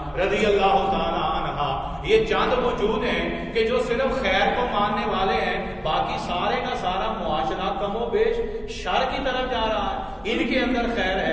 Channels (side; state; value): both; identical; correlation 1.00